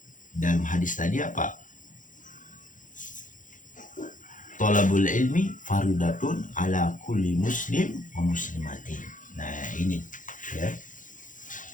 Dalam hadis tadi Thalabul ilmi faridatun ala kulli muslim wa muslimatin. Nah, ini, ya.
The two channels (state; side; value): late; right; 0.38 ms